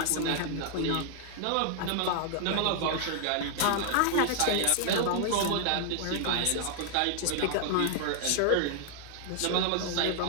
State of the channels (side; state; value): both; different; correlation 0.00